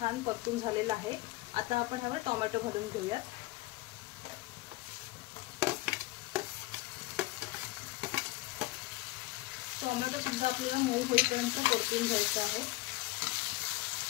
परतून झालेला आहे। आता आपण ह्यावर टोमॅटो घालून घेऊयात। टोमॅटो सुद्धा आपल्याला मऊ होईपर्यंत परतून घ्यायचा आहे।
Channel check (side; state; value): right; quieter; 19.7 dB